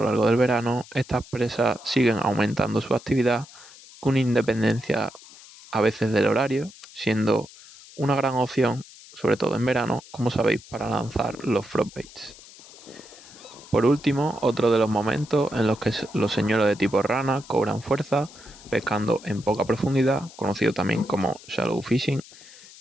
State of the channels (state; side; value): noise; left; hiss, 20 dB below the sound